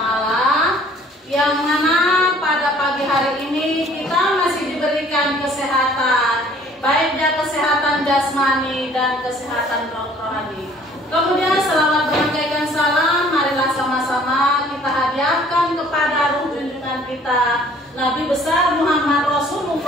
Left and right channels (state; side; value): normal; both; correlation 0.56